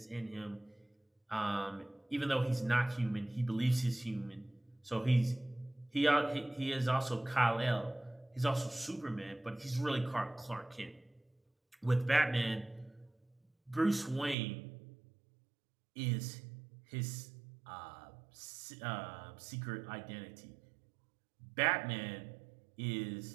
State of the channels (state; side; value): drops out; left; at 14.4 s